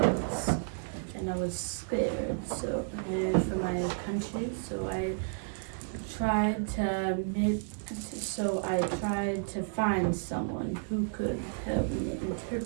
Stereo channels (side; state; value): left; silent; digital silence